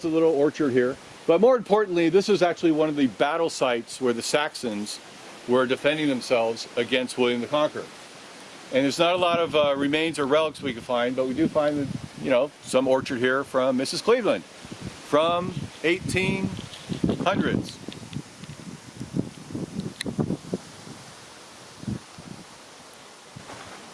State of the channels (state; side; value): identical; both; correlation 1.00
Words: a little orchard here. But more importantly, this is actually one of the battle sites where the Saxons were defending themselves against William the Conqueror. And there's not a lot of remains or relics we can find, but we do find, some orchard here from Mrs. Cleveland from 1800s.